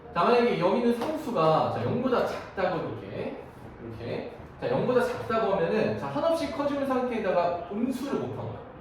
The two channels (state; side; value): identical; both; correlation 1.00